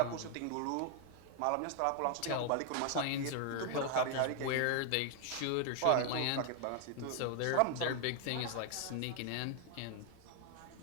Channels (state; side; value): different; both; correlation 0.00